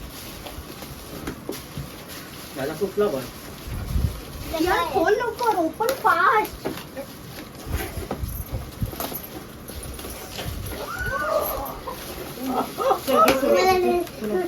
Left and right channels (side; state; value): both; identical; correlation 1.00